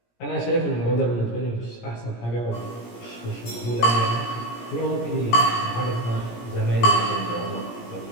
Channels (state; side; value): late; right; 17 ms